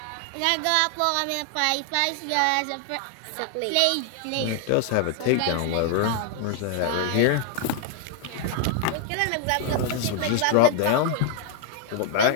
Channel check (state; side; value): different; both; correlation 0.00